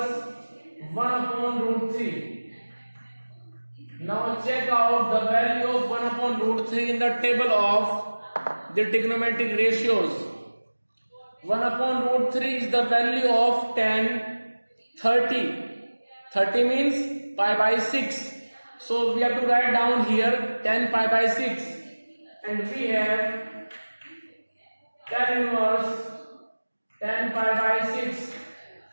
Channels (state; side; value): inverted; both; correlation -1.00